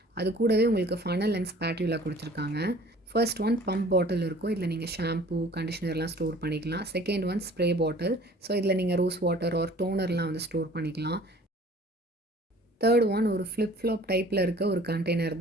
அது கூடவே உங்களுக்கு ஃபனல் அண்ட் ஸ்பாட்யூலா குடுத்துருக்காங்க. ஃபர்ஸ்ட் ஒன் பம்ப் பாட்டில் இருக்கும். இதில நீங்க ஷாம்பூ, கண்டிஷனர்லாம் ஸ்டோர் பண்ணிக்கலாம். Second one spray bottle. So இதில நீங்க ரோஸ் வாட்டர் ஆர் டோனர்லாம் வந்து ஸ்டோர் பண்ணிக்கலாம். தேர்ட் ஒன் ஒரு ஃப்ளிப் ஃப்ளாப் டைப்பில் இருக்க ஒரு கண்டெய்னர்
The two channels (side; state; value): both; normal; correlation 0.50